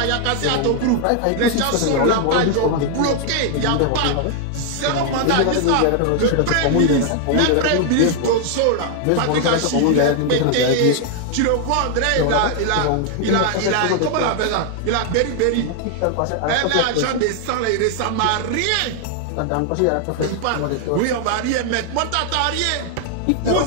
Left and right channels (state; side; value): different; both; correlation 0.00